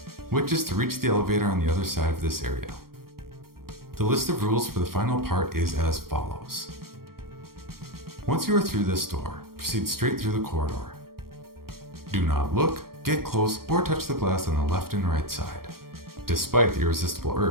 which is to reach the elevator on the other side of this area. The list of rules for the final part is as follows. Once you are through this door, proceed straight through the corridor. Do not look, get close, or touch the glass on the left and right side, despite the irresistible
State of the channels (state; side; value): late; left; 0.93 ms